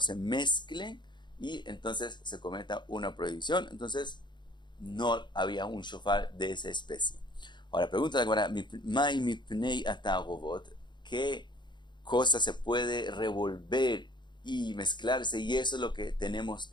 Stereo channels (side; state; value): right; late; 0.22 ms